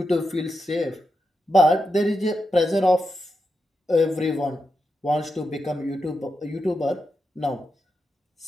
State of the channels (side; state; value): both; normal; correlation 0.87